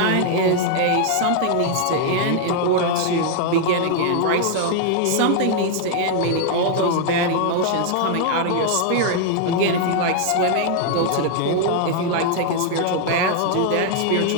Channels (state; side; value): different; both; correlation 0.00